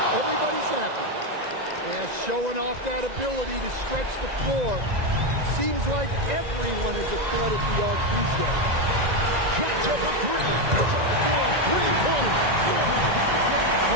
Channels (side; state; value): left; late; 1.9 ms